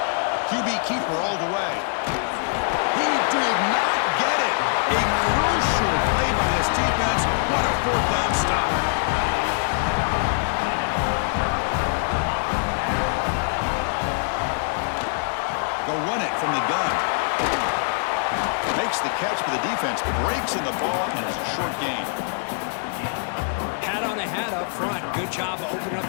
QB keeper all the way. He did not get it. A crucial play by this defense. What a 4th down stop. They'll run it from the gun. Makes the catch for the defense, breaks in the ball, and it's a short gain. Hat on a hat up front. Good job of opening up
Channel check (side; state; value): right; silent; digital silence